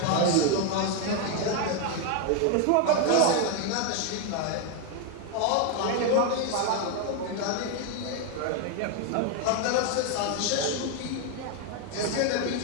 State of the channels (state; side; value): different; both; correlation 0.01